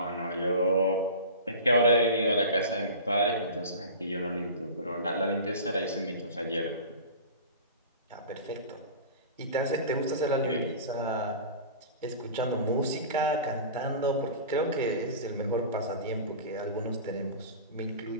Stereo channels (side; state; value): both; inverted; correlation -0.35